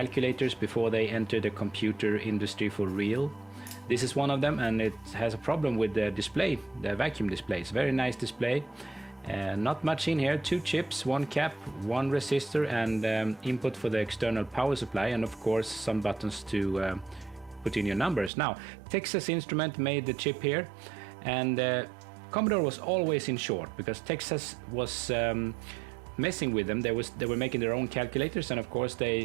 before they entered the computer industry for real? This is one of them, and it has a problem with the display, the vacuum display. It's a very nice display. Not much in here, 2 chips, 1 cap, 1 resistor, and input for the external power supply, and of course some buttons to put in your numbers. Now, Texas Instrument made the chip here, and Commodore was always in short because Texas was messing with them. They were making their own calculators, and of course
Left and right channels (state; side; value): drops out; left; at 18.3 s